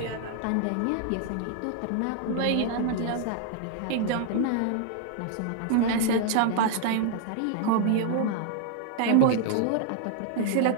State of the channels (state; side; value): different; both; correlation 0.00